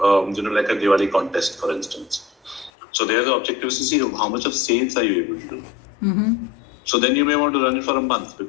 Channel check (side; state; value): right; drops out; at 2.7 s